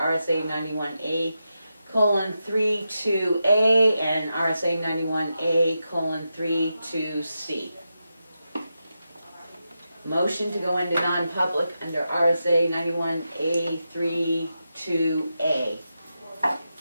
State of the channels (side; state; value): both; inverted; correlation -0.88